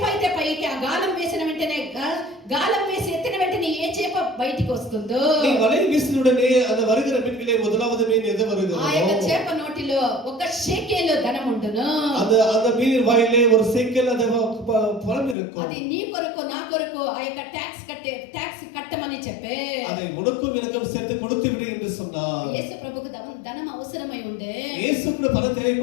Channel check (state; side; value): drops out; right; at 15.4 s